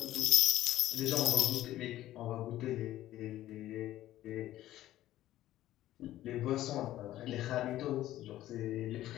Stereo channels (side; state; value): right; quieter; 14.2 dB